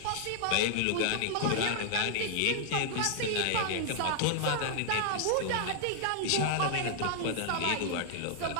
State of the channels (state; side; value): different; both; correlation -0.01